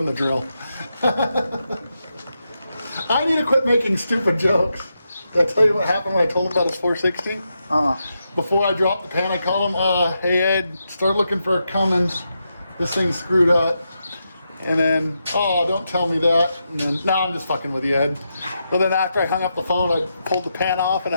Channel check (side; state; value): both; inverted; correlation -0.85